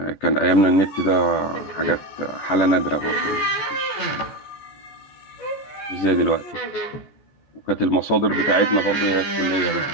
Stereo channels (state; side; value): late; right; 14 ms